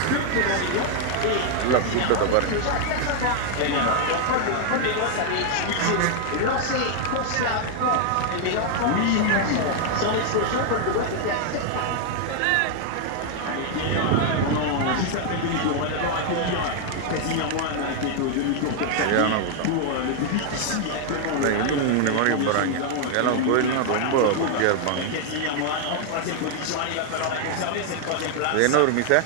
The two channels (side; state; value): both; different; correlation 0.00